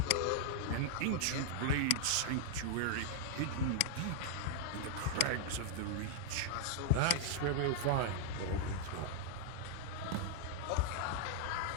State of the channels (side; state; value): both; different; correlation -0.01